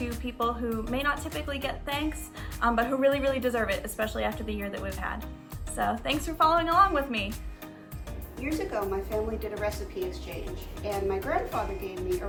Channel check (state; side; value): identical; both; correlation 1.00